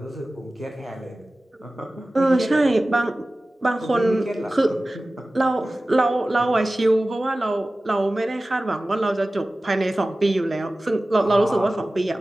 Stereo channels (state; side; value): normal; both; correlation 0.96